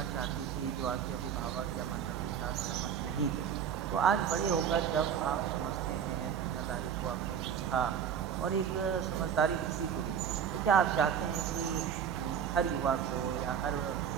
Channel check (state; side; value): quieter; left; 8.1 dB